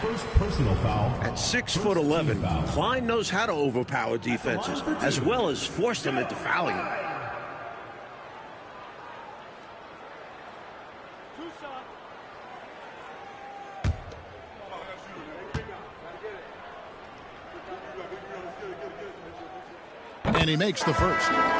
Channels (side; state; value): both; identical; correlation 1.00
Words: personal foul. At 6'11", Klein knows how to overpower defenses, as well as force them into fouling. And he makes the first.